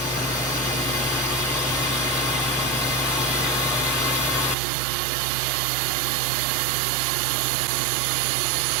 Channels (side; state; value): left; drops out; at 4.5 s